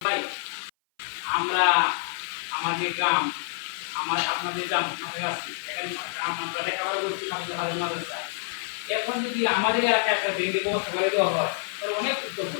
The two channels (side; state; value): right; silent; 56 dB below the other